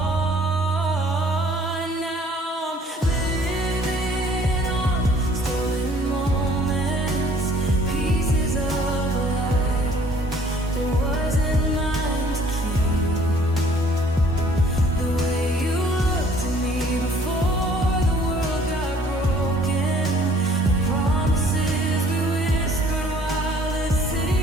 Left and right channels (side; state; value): both; normal; correlation 0.57